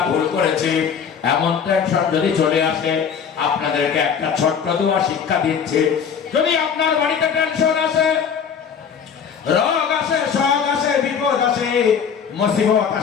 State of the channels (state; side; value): quieter; right; 7.1 dB